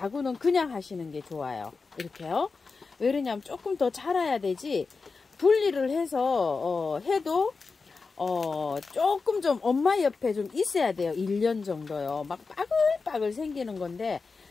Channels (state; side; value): quieter; right; 4.5 dB